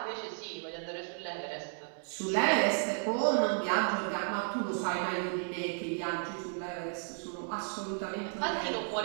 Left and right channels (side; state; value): left; silent; 55 dB below the other